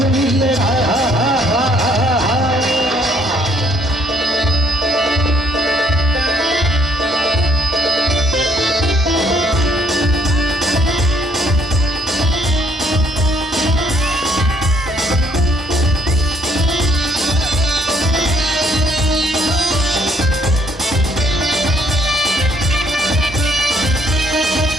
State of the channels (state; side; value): normal; both; correlation 0.66